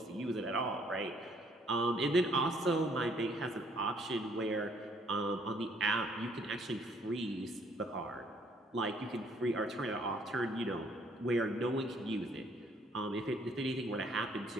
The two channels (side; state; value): both; normal; correlation 0.64